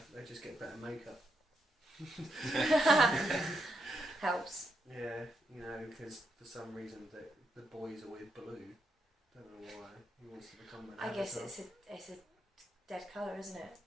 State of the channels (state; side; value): normal; both; correlation 0.82